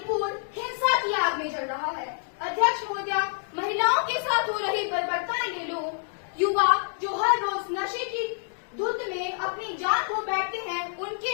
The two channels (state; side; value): silent; right; 60 dB below the other